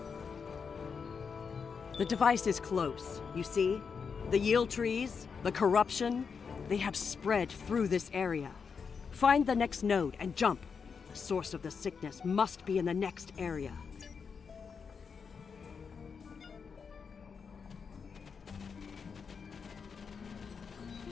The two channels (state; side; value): quieter; right; 5.9 dB